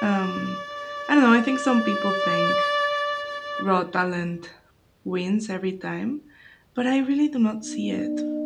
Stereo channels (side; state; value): both; identical; correlation 1.00